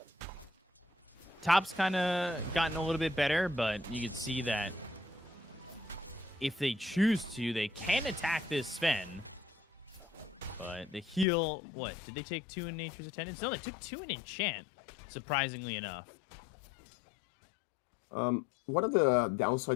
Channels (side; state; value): right; drops out; at 11.2 s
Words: Top's kind of gotten a little bit better, but you can see that if they choose to, they can attack this Sven. But the heal, what? Did they take 2 in Nature's Attendance? No, they took 2 in Enchant, surprisingly enough. One of the